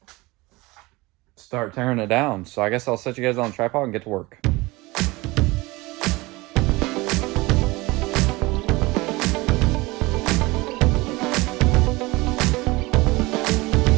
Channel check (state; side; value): quieter; left; 22.3 dB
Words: start tearing it down. So I guess I'll set you guys on a tripod and get to work.